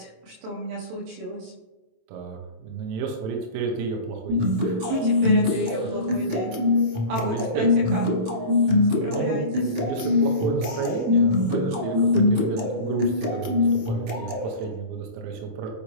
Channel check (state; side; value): late; left; 27 ms